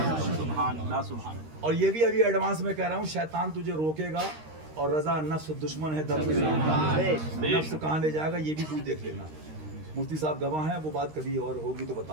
और ये भी अभी एडवांस में कह रहा हूँ, शैतान तुझे रोकेगा और रजा नफ्स दुश्मन है, दर्द नफ्स कहाँ ले जाएगा ये भी तू देख लेना। मुफ्ती साहब गवाह हैं, वो बात कभी और होगी तो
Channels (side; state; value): left; late; 13 ms